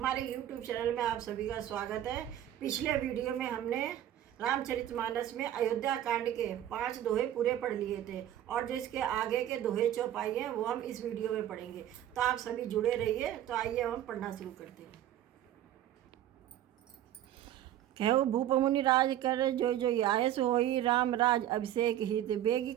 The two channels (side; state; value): left; quieter; 11.9 dB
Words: YouTube चैनल में आप सभी का स्वागत है। पिछले वीडियो में हमने रामचरितमानस में अयोध्या कांड के 5 दोहे पूरे पढ़ लिए थे और जिसके आगे के दोहे चौपाई हैं वो हम इस वीडियो में पढ़ेंगे। तो आप सभी जुड़े रहिए। तो आइए हम पढ़ना शुरू करते हैं। कहो भूप मुनि राज कर जो जो आयस होई, राम राज अभिषेक हित बेगी